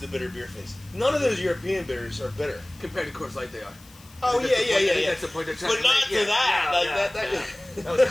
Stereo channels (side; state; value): left; noise; hiss, 25 dB below the sound